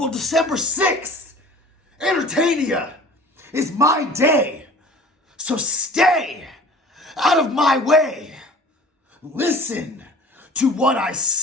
December 6th, Entertainia is my day. So stay out of my way. Listen to what I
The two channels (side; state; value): both; normal; correlation 0.45